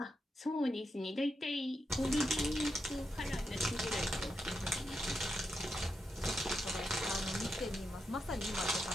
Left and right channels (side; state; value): both; normal; correlation 0.85